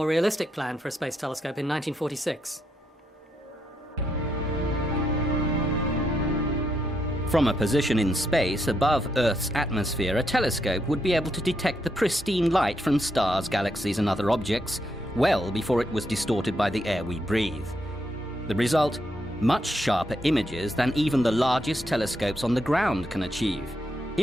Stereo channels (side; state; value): both; normal; correlation 0.79